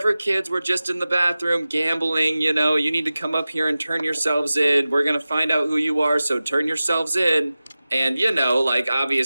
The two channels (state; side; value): inverted; both; correlation -0.96